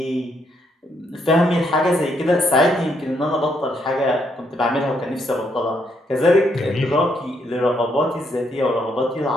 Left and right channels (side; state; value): both; normal; correlation 0.74